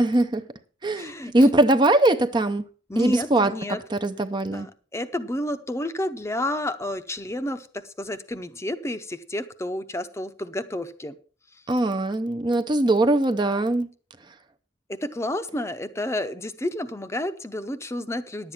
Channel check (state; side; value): normal; both; correlation 0.65